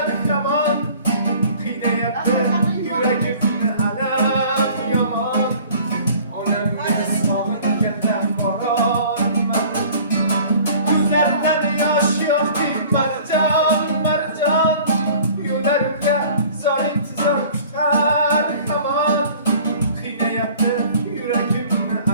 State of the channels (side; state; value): both; inverted; correlation -0.49